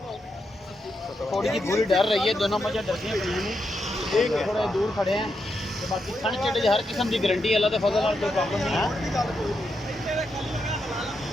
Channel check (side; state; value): both; normal; correlation 0.83